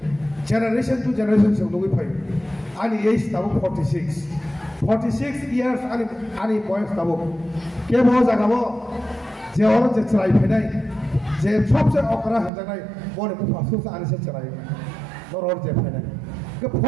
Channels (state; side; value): drops out; left; at 12.5 s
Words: জেনারেশন টু জেনারেশন সে নগই ফাইও আনি এজ তাবো 46 ইয়ার্স আনি বয়স তাবো কে ব জাগাবো যে ওর যে চলাই ফেনাই যে সবচেয়ে অকরা হজানাই বনে মুফাসুস আনিসে চলাই নরর যে ফেনাই